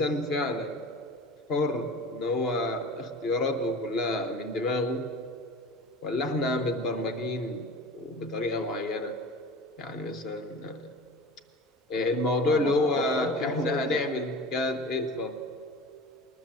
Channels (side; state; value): both; normal; correlation 0.37